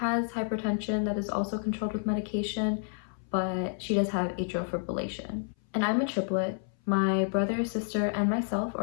hypertension that is also controlled with medication, but she does have atrial fibrillation. And I'm a triplet. My brother, sister, and myself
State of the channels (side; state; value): right; silent; 58 dB below the other